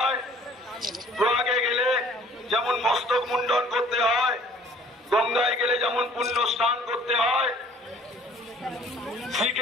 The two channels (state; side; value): normal; both; correlation 0.55